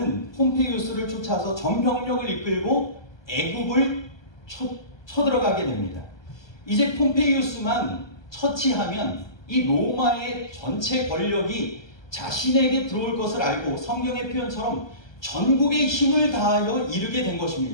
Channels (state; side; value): late; right; 1.2 ms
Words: 폼페이우스를 쫓아서 전병력을 이끌고 애굽을 쳐들어가게 됩니다. 이제 폼페이우스만 처치하면 이 로마의 전체 권력이 자신에게 들어올 것을 알고 성경의 표현처럼 전국의 힘을 다하여 이르게 된